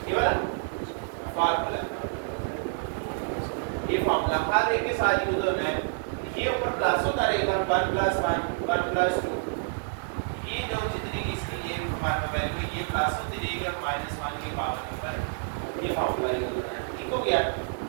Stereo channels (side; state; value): left; silent; digital silence